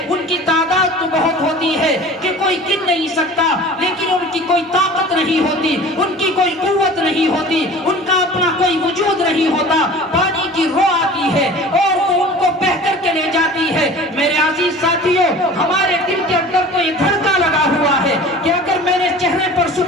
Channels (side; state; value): both; normal; correlation 0.41